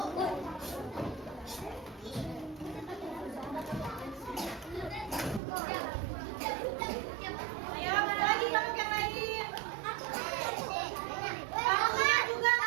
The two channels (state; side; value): drops out; left; at 5.4 s